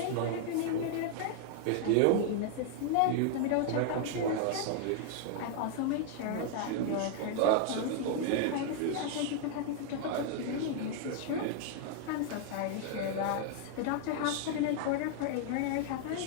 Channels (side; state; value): both; different; correlation 0.00